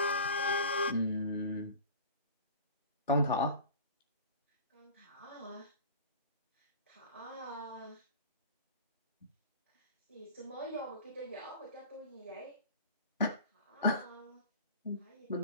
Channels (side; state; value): both; inverted; correlation -0.38